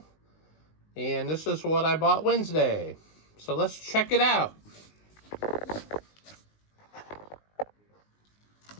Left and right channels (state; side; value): late; right; 19 ms